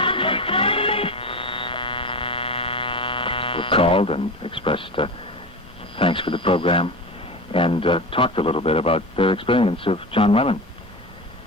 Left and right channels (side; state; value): both; normal; correlation 0.27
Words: called and expressed thanks for the program and talked a little bit about their experience of John Lennon.